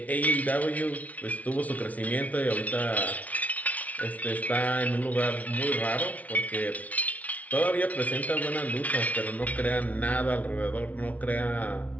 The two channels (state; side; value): late; right; 0.071 ms